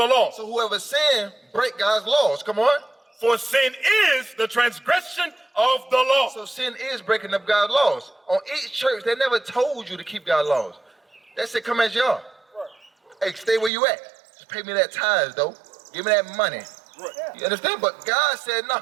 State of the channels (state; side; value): drops out; left; at 13.7 s